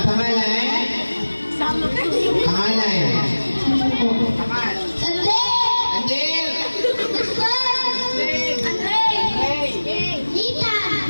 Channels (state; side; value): inverted; both; correlation -1.00